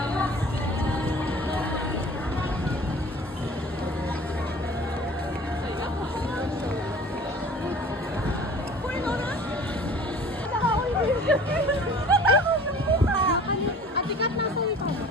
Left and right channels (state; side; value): normal; both; correlation 0.45